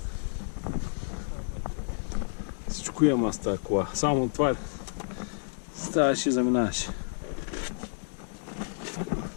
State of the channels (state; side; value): silent; right; digital silence